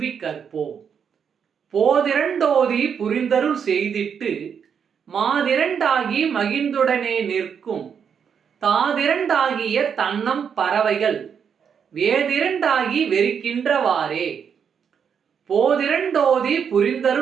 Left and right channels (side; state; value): left; quieter; 7.3 dB